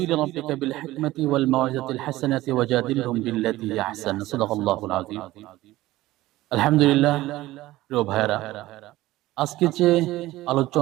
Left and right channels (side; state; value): left; quieter; 17.1 dB